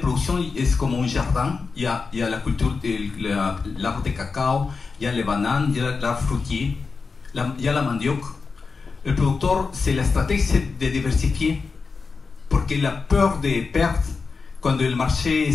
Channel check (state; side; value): quieter; right; 4.7 dB